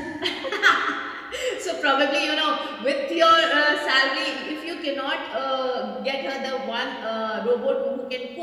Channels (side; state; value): both; identical; correlation 1.00